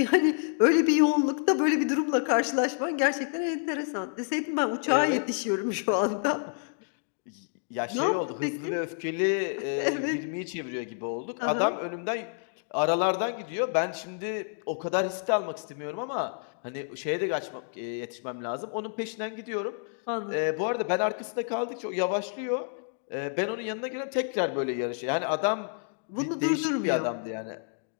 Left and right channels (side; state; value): right; silent; digital silence